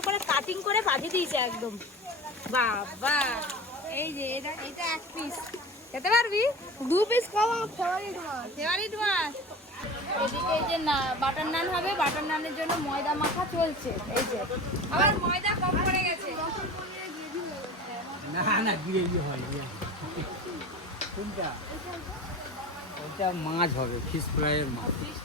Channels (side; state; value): both; normal; correlation 0.34